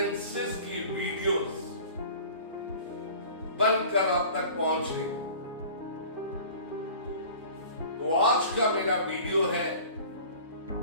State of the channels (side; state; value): both; inverted; correlation -0.43